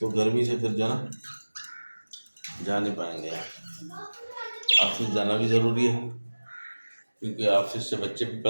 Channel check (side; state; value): both; inverted; correlation -1.00